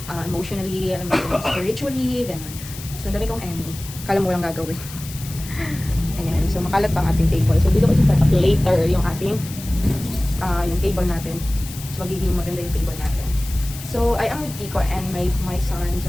emotionally, spiritually, ganun. So, dami kong Emmy. Kala mo lang gagawin. Ayan. So, makalat pa ang ating table. So, dito ko set up later yung ating yung table natin. So, magiging maganda yung table natin. So, I am with Kiko and my son,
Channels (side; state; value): left; noise; hiss, 14 dB below the sound